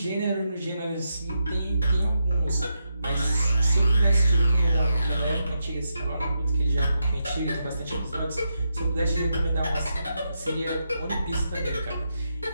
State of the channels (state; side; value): inverted; both; correlation -0.85